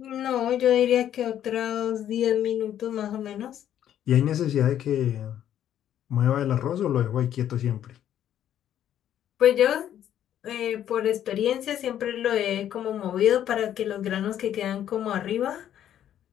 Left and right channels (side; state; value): right; quieter; 10.8 dB